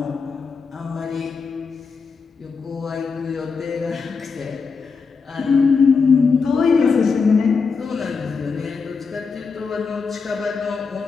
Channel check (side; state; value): right; quieter; 5.1 dB